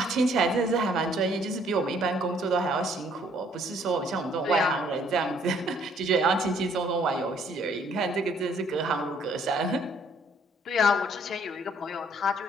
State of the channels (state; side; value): normal; both; correlation 0.63